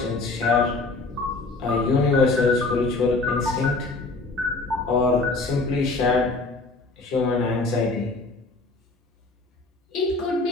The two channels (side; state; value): right; quieter; 3.4 dB